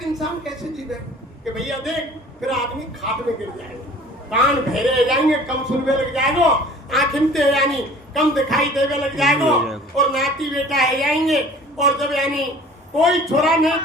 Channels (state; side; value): normal; both; correlation 0.47